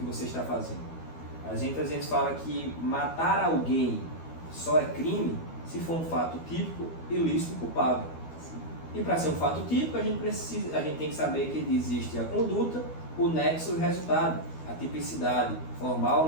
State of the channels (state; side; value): late; right; 12 ms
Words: você está fazendo. A gente às vezes fala que matar alguém só é crime se for um fato típico, ilícito e culpável. E para ser um fato típico, a gente tem que saber que existe a conduta, o nexo e o resultado, a tipicidade, formal ou